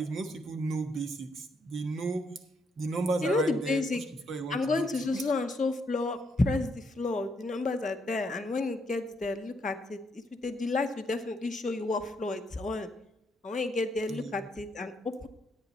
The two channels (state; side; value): normal; both; correlation 0.75